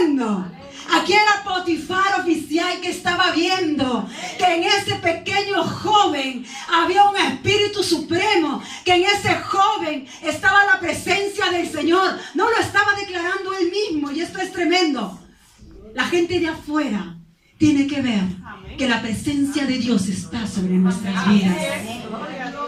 Aquí era Potifar, oficial, que estaba viendo que en ese pequeño joven había un espíritu supremo, que en ese joven estaba la presencia del Señor. No lo estaba declarando él mismo, y esto es tremendo. La gente de afuera tiene que ver que la presencia de Dios está sobre nuestras vidas.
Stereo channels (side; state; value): both; identical; correlation 1.00